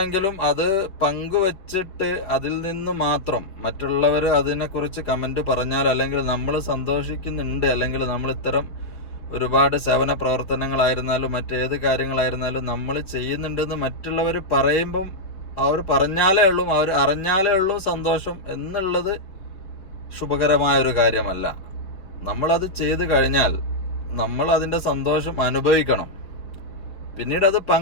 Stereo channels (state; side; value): late; right; 5.2 ms